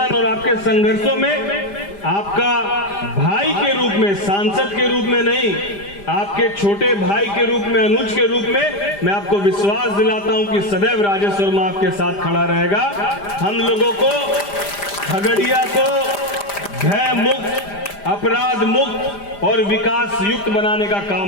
और आपके संघर्षों में आपका भाई के रूप में, सांसद के रूप में नहीं, आपके छोटे भाई के रूप में, अनुज के रूप में मैं आपको विश्वास दिलाता हूं कि सदैव राजेश वर्मा आपके साथ खड़ा रहेगा। हम लोगों को खगड़िया को भय मुक्त, अपराध मुक्त और विकास युक्त बनाने का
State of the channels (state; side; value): late; right; 5.0 ms